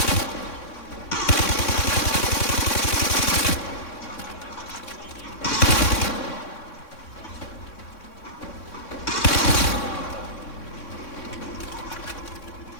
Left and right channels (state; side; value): late; right; 3.6 ms